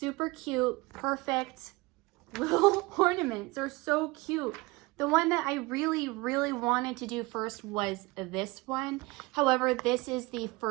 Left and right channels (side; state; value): left; quieter; 23.4 dB